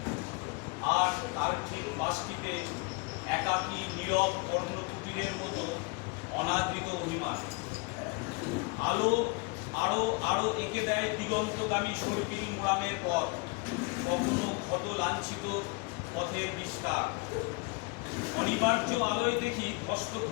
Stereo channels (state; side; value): quieter; right; 27.9 dB